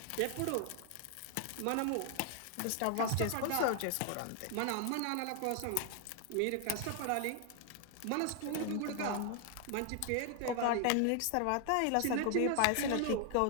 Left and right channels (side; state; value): both; different; correlation 0.00